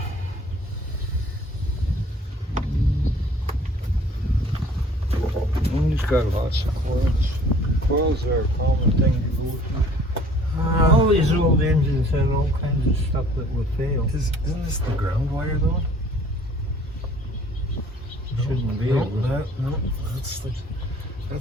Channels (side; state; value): both; normal; correlation 0.53